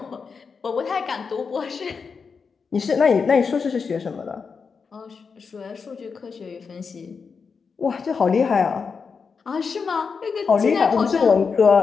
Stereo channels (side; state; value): right; quieter; 5.4 dB